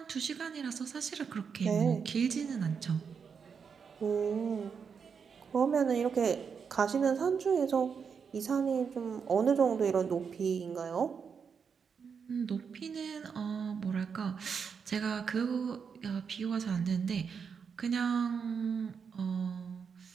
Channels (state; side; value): quieter; left; 6.3 dB